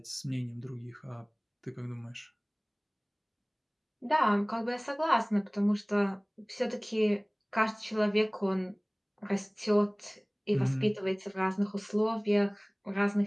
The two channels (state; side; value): identical; both; correlation 1.00